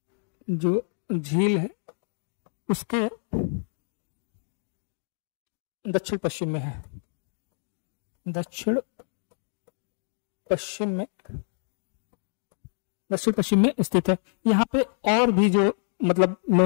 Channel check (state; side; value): silent; right; digital silence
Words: जो झील है, उसके दक्षिण पश्चिम में है। दक्षिण पश्चिम में स्थित है। यहाँ पे और भी जो मतलब